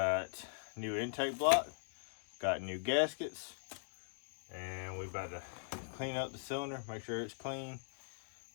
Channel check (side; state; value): right; silent; digital silence